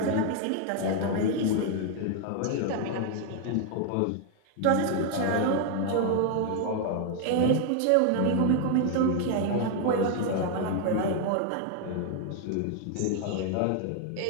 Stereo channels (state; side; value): different; both; correlation 0.00